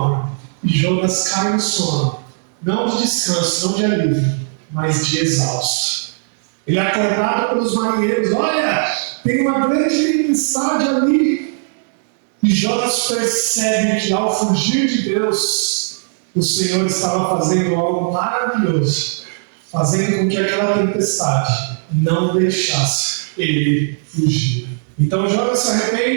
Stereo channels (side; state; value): left; silent; digital silence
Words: E Jonas cai no sono. Não de descanso, não de alívio, mas de exausto. Ele é acordado pelos marinheiros. Olha, tem uma grande tempestade ali. E Jonas percebe que ao fugir de Deus, o Senhor estava fazendo algo maravilhoso, fazendo com que aquela tempestade não deixasse ele fugir. Então Jonas se